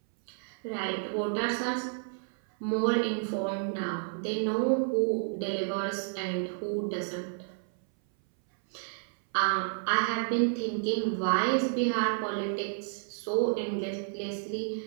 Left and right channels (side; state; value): left; silent; 57 dB below the other